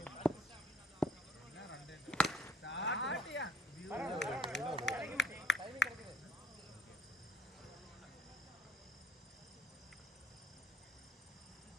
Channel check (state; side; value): normal; both; correlation 0.58